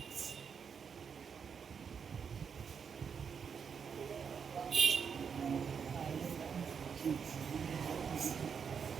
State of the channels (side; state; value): left; quieter; 6.6 dB